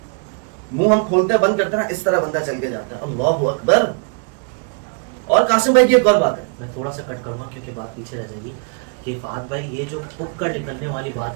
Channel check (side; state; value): left; quieter; 37.9 dB